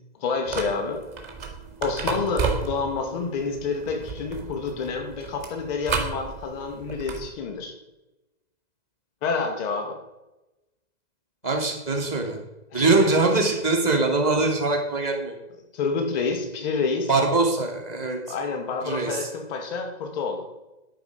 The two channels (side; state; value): right; late; 2.0 ms